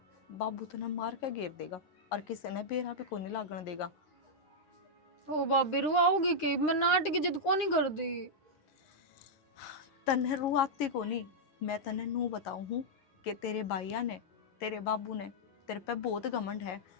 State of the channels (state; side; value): late; right; 9.8 ms